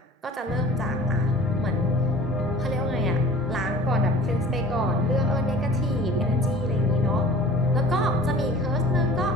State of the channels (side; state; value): both; normal; correlation 0.44